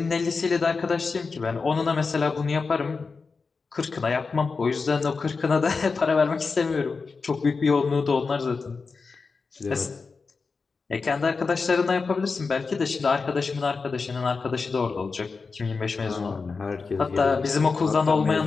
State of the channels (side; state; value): right; quieter; 4.6 dB